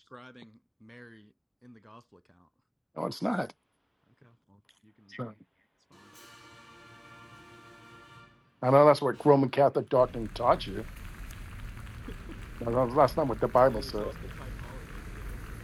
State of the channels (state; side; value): identical; both; correlation 1.00